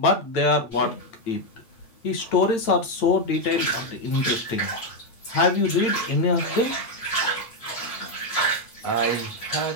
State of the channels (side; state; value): right; late; 8.8 ms